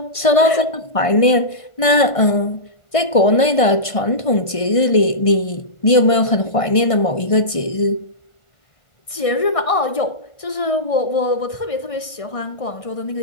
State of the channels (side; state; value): right; late; 1.5 ms